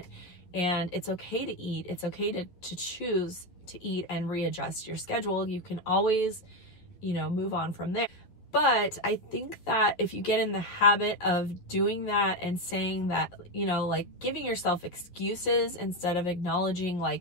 And it's okay to eat. It's okay to choose to eat and readjust your schedule. You can always, move on from there. But I think that if you get in the habit of doing that and saying that, like giving yourself excuses instead of acknowledging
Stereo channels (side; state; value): right; late; 11 ms